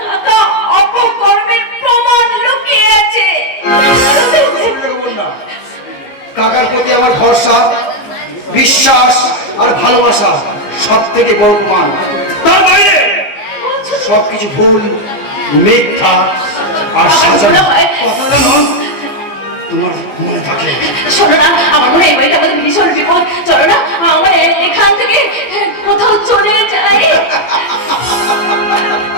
কাকা অপকর্মের প্রমাণ লুকিয়ে আছে। কাকার প্রতি আমার ভরসা, বিশ্বাস আর ভালোবাসা সব থেকে বড় প্রমাণ। তার বাইরে সবকিছু ভুল, মিথ্যা আর সাজানো। কথাটা নয়, তোমার মনে থাকে? শোনো না, আমার মনে হয় এই বাড়িটা আমাদের ভীষণ বিপদ। চলো না, আমার এখান থেকে কোথাও চলে যাই।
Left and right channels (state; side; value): late; right; 14 ms